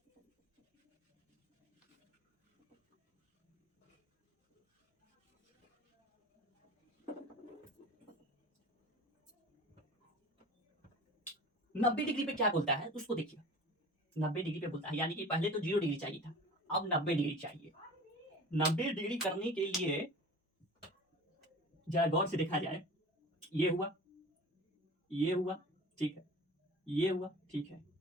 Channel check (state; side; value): normal; both; correlation 0.39